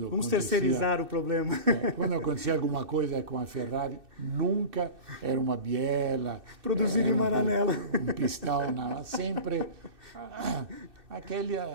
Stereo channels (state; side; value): late; left; 2.6 ms